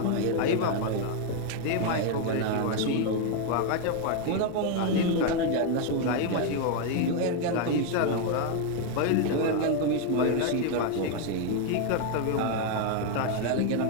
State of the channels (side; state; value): both; different; correlation 0.01